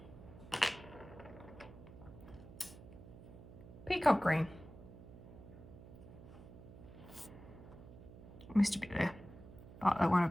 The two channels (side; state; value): right; noise; hum, 16 dB below the sound